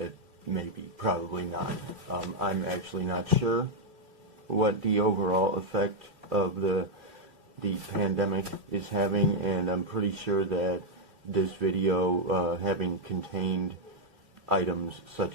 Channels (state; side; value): late; left; 2.4 ms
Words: maybe, probably not. I'm actually not sure what the overall effect of the pandemic is having, and I'm pretty sure that this video, having contained items